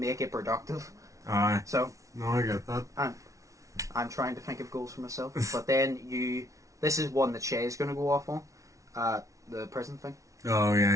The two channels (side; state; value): left; late; 0.16 ms